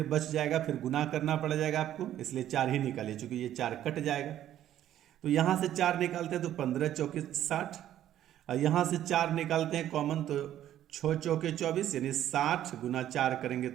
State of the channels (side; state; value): left; quieter; 11.9 dB